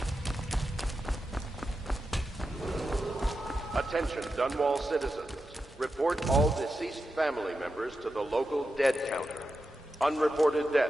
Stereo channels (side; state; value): both; normal; correlation 0.89